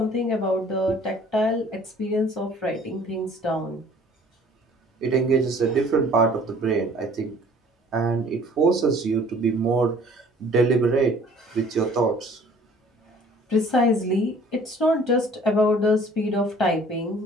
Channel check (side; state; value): both; normal; correlation 0.53